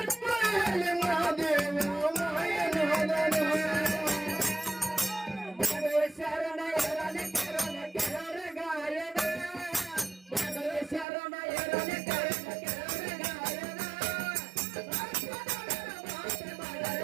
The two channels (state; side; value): drops out; left; at 11.1 s